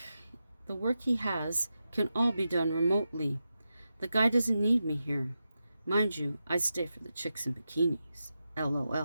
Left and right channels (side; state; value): both; inverted; correlation -0.90